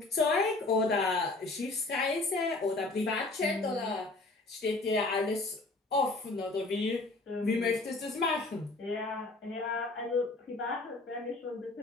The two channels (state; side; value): quieter; right; 3.2 dB